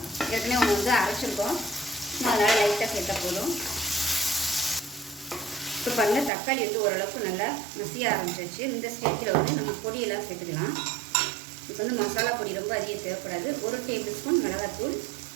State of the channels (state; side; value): drops out; left; at 6.3 s